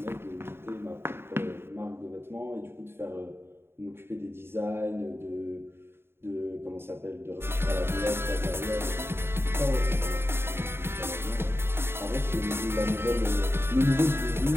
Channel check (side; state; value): left; late; 0.11 ms